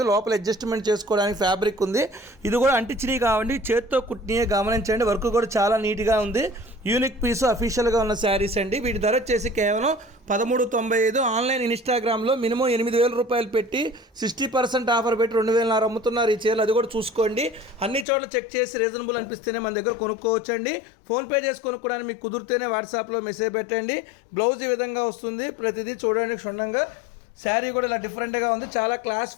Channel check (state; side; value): drops out; right; at 18.1 s